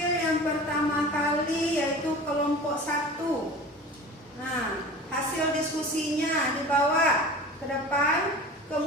yang pertama kali, yaitu kelompok 1. Nah, hasil diskusinya dibawa ke depan.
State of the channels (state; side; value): normal; both; correlation 0.37